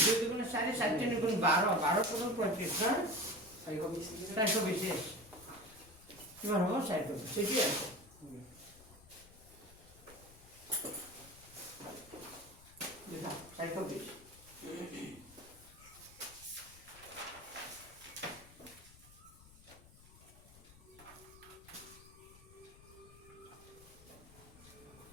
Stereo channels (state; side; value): noise; left; rumble, 21 dB below the sound